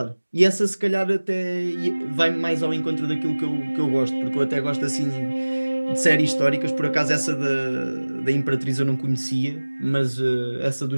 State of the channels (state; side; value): inverted; both; correlation -1.00